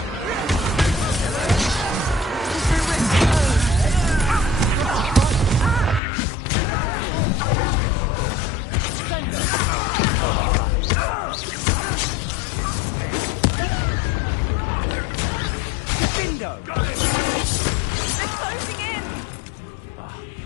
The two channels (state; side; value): drops out; right; at 6.0 s